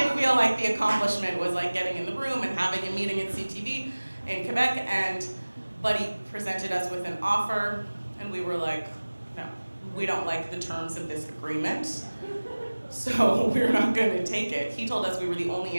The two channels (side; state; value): both; inverted; correlation -1.00